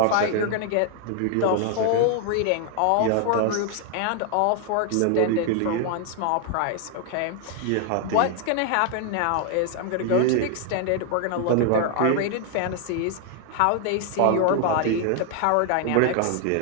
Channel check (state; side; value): different; both; correlation 0.00